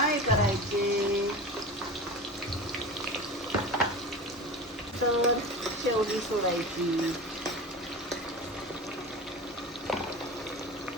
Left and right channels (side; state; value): both; normal; correlation 0.31